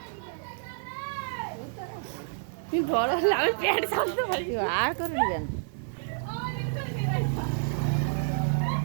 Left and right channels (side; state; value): left; silent; 58 dB below the other